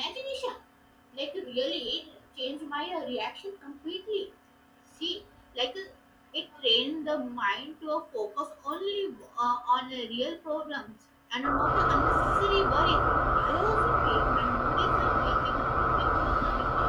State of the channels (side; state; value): both; identical; correlation 1.00